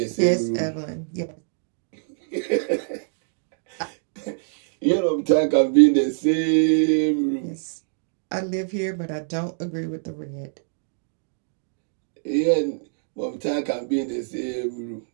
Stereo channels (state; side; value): silent; left; digital silence